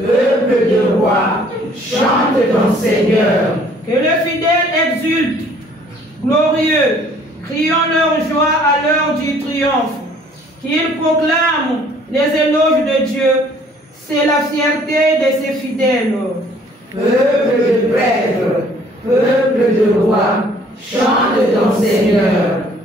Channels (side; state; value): both; normal; correlation 0.58